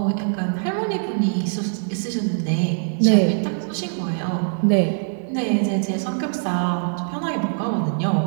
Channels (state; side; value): silent; left; digital silence